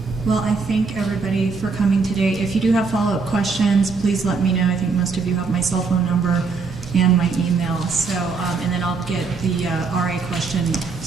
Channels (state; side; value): quieter; left; 4.7 dB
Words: Well, I thank everybody for coming today. If you do have follow-up questions, please let me know. I think most of you have my cell phone number and my email. So, and then I'll get the RA question,